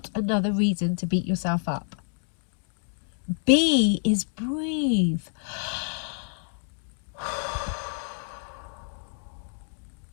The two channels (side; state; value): right; silent; 59 dB below the other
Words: another reason to beat yourself up. B is breathe.